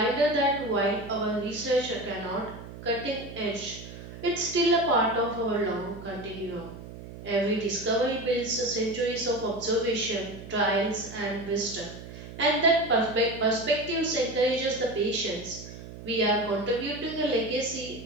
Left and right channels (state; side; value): noise; right; hum, 13 dB below the sound